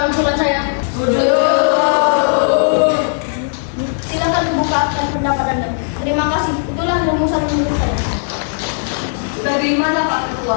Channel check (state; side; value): silent; right; digital silence